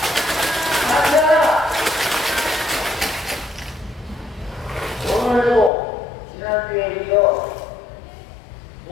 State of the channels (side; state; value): right; drops out; at 5.7 s